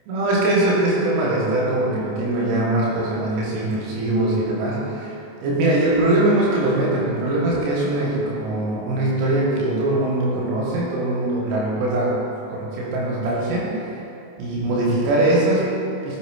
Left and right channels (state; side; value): late; left; 28 ms